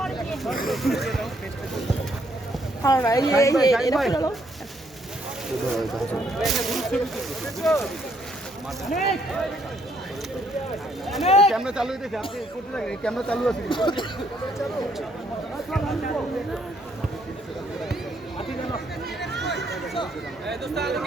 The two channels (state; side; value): normal; both; correlation 0.70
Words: ক্যামেরা চালু হইতেছে, আপনি করতে থাকেন, ক্যামেরা চালু আছে।